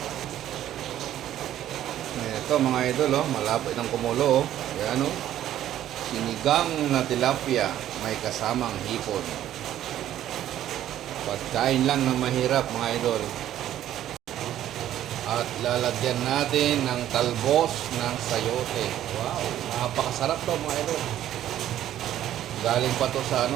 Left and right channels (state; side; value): quieter; left; 12.1 dB